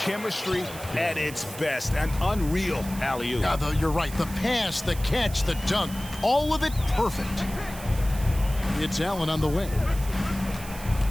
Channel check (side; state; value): right; noise; hiss, 14 dB below the sound